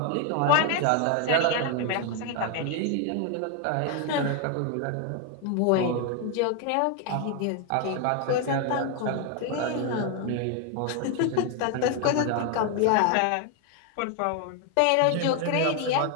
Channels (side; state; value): both; different; correlation 0.01